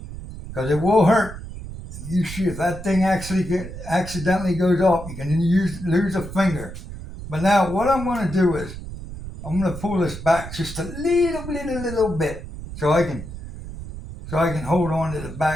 because it will hurt. If that thing accidentally goes off, you can lose a finger. But now what I'm going to do is I'm going to pull this back just a little bit, so I can hold on to the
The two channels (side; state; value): right; noise; rumble, 11 dB below the sound